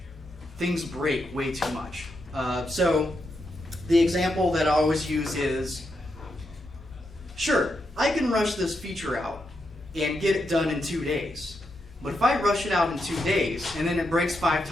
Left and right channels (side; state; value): both; normal; correlation 0.83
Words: things break way too much. So the example that I always use is, sure, I can rush this feature out and get it done in 2 days. But if I rush it out in 2 days and then it breaks 5